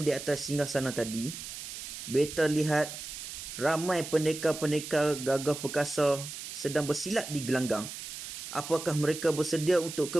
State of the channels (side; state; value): right; noise; hiss, 9 dB below the sound